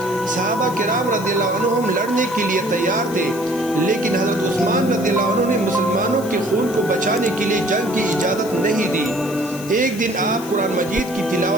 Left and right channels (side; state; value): left; noise; hiss, 16 dB below the sound